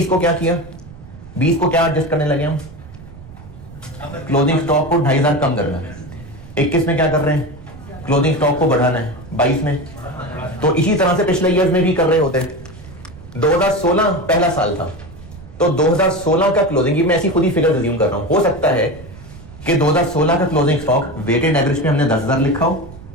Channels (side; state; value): right; noise; rumble, 18 dB below the sound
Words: को क्या किया? 20 को क्या एडजस्ट करने लगे हम? क्लोजिंग स्टॉक को 2,500 कम करना है। 21 में क्या कर रहे हैं? क्लोजिंग स्टॉक को बढ़ाना है। 22 में तो इसी तरह से पिछले ईयर्स में भी कर रहे होते हैं। 2016 पहला साल था, तो 2016 का क्लोजिंग, ये मैं ऐसी खुद ही फिगर अज्यूम कर रहा हूं, हो सकता है कि 2016 का क्लोजिंग स्टॉक वेटेड एवरेज में हमने 10,000 लिखा हो